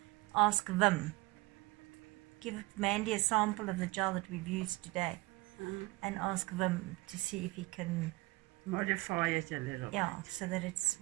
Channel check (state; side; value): quieter; left; 22.8 dB